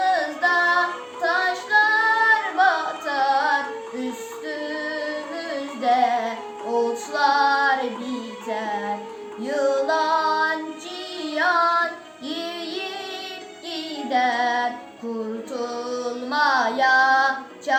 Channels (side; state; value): both; identical; correlation 1.00